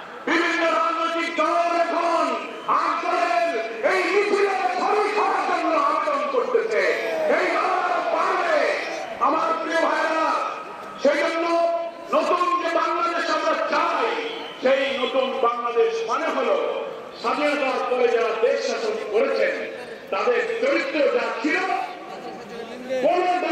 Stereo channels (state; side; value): identical; both; correlation 1.00